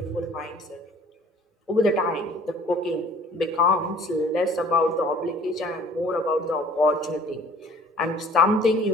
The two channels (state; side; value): normal; both; correlation 0.51